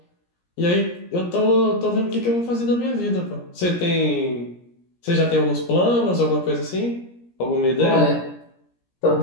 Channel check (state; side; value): late; right; 17 ms